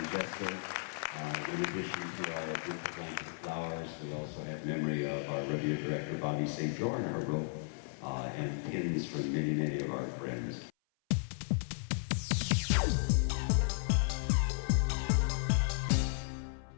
Jessica. In addition to our beautiful blanket of flowers, we also have memory of our rodeo director, Bobby St. John, our rope, and pins from many, many of our friends.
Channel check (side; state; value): right; silent; 55 dB below the other